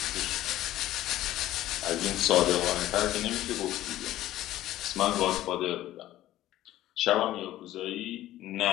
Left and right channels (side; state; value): right; quieter; 14.4 dB